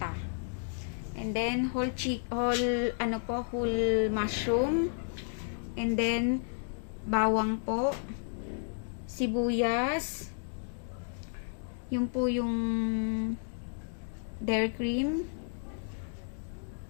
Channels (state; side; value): silent; right; digital silence